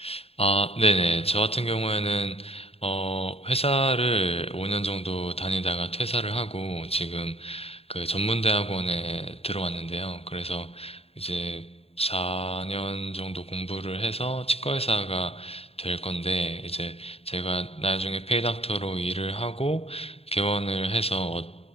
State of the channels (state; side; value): late; right; 0.29 ms